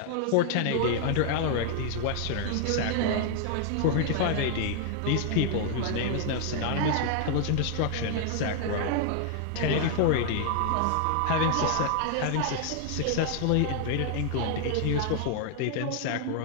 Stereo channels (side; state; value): both; different; correlation 0.00